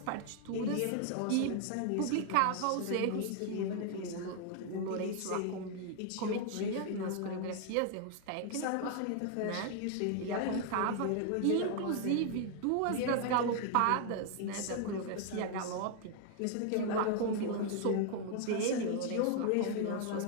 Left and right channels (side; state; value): both; different; correlation 0.00